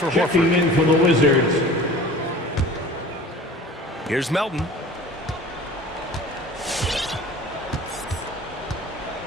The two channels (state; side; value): normal; both; correlation 0.42